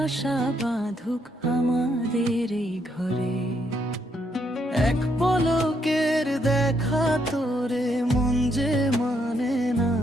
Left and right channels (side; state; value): both; normal; correlation 0.75